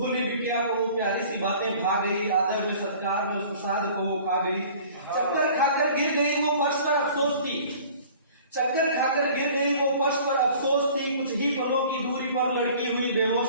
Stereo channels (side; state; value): both; inverted; correlation -0.48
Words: बिटिया को वो प्यारी सी बातें भा गई, आदर में सत्कार में उस प्रसाद को वो खा गई। चक्कर खाकर गिर गई वो फर्श पर, अफसोस थी। चक्कर खाकर गिर गई वो फर्श पर, अफसोस थी। कुछ ही पलों की दूरी पर लड़की हुई